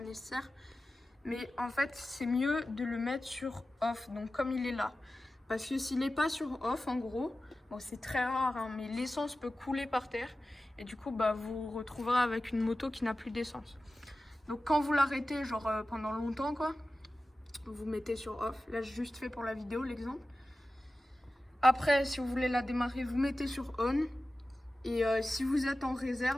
nécessaire. Mais en fait, c'est mieux de le mettre sur off, donc comme il est là. Parce que s'il n'est pas sur off, en gros, bon, c'est très rare, hein, mais l'essence peut couler par terre. Et du coup, bah, vous vous retrouverez avec une moto qui n'a plus d'essence. Donc quand vous l'arrêtez, genre pendant longtemps, quoi, vous mettez sur off. Là, j'ai juste fait pour la vidéo, l'exemple. Après, si vous voulez la démarrer, vous mettez sur on. Et si vous êtes en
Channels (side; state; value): both; normal; correlation 0.95